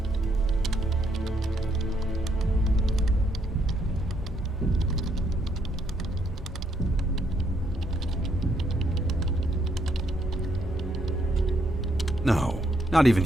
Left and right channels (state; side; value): normal; both; correlation 0.73